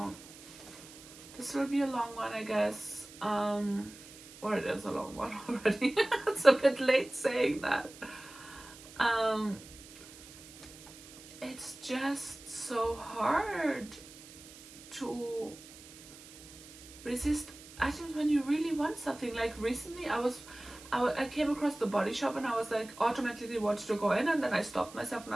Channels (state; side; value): noise; right; hiss, 18 dB below the sound